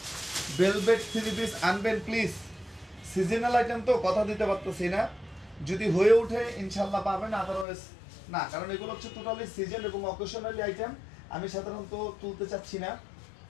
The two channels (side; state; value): right; drops out; at 7.7 s